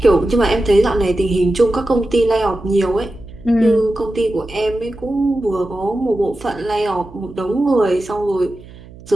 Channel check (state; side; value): noise; right; hum, 20 dB below the sound